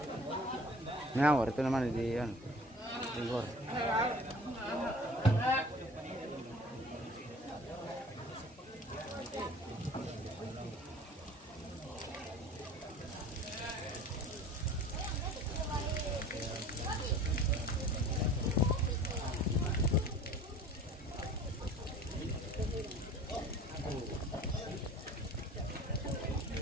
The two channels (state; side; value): normal; both; correlation 0.45